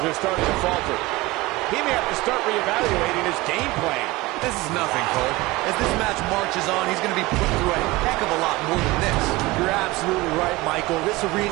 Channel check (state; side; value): quieter; left; 20.6 dB